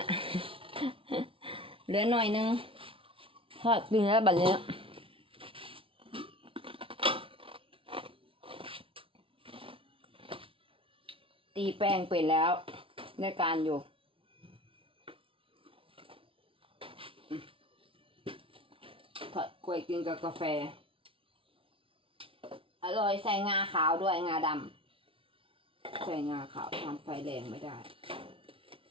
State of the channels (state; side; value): late; left; 0.26 ms